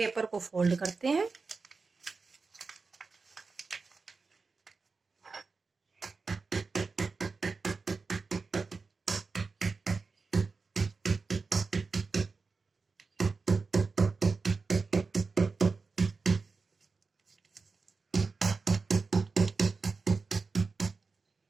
को फोल्ड करते हैं,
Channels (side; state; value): left; quieter; 4.4 dB